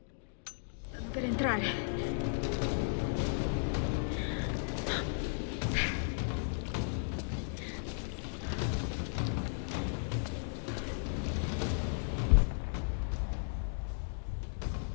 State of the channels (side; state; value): right; silent; digital silence